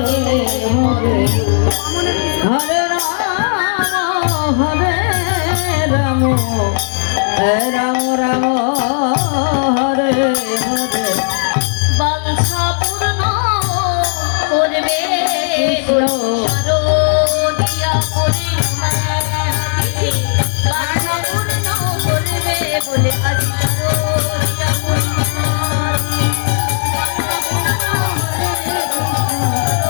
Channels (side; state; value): right; silent; 67 dB below the other